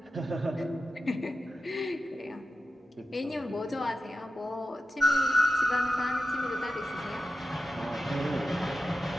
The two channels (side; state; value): both; normal; correlation 0.92